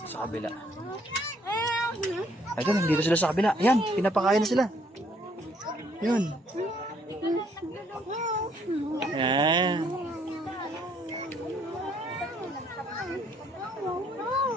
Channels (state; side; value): normal; both; correlation 0.66